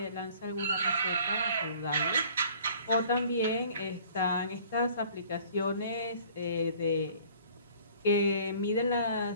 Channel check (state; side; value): inverted; both; correlation -0.53